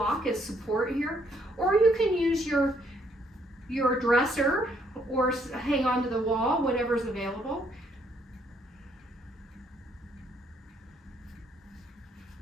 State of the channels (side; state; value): both; normal; correlation 0.69